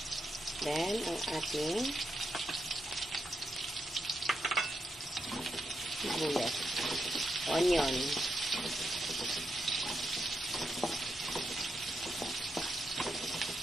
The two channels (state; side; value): normal; both; correlation 0.83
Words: Then, ang ating sibuyas. Onion.